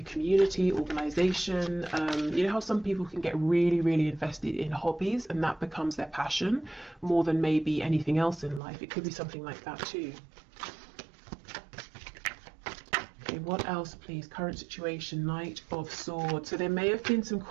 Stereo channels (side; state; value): left; drops out; at 8.6 s